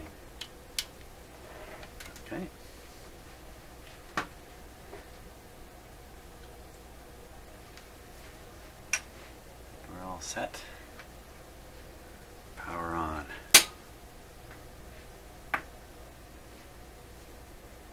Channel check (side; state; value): both; identical; correlation 1.00